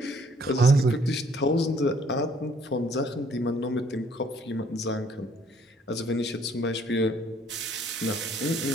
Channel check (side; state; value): both; normal; correlation 0.62